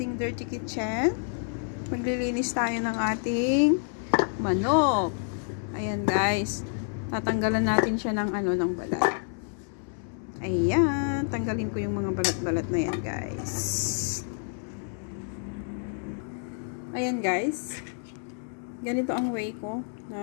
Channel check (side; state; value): right; silent; 59 dB below the other